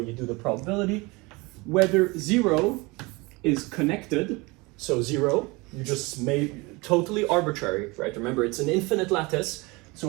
do the probability. Whether 0 is connected, so 0, you just made totally arbitrary, right? Remember, it's an infinite lattice, so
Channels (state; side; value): quieter; left; 25.1 dB